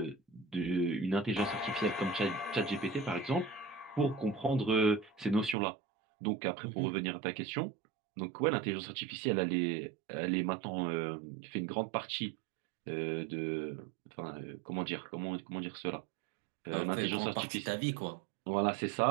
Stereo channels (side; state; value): left; drops out; at 5.6 s